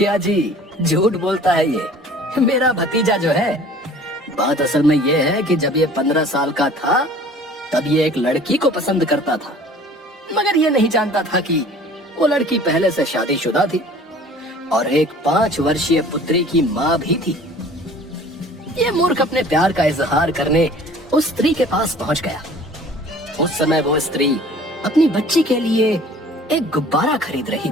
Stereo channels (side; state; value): both; normal; correlation 0.48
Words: जी, झूठ बोलता है ये। मेरा भतीजा जो है, बात असल में ये है कि जब ये 15 साल का था तब ये एक लड़की को पसंद करता था, मगर ये नहीं जानता था कि वो लड़की पहले से शादीशुदा थी और एक 5 वर्षीय पुत्री की माँ भी थी। ये मूर्ख अपने प्यार का इजहार करने उस स्त्री के पास पहुंच गया। उस समय वो स्त्री अपनी बच्ची के लिए एक गुब्बारा खरीद रही